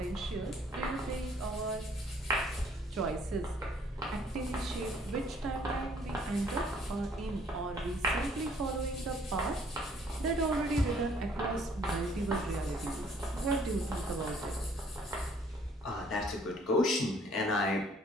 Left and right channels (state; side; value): normal; both; correlation 0.60